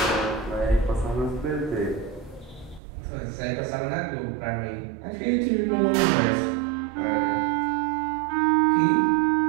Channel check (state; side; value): drops out; left; at 2.8 s